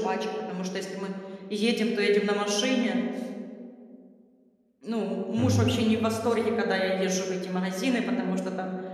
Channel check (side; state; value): both; identical; correlation 1.00